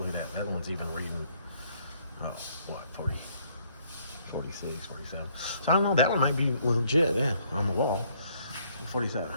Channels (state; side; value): inverted; both; correlation -0.66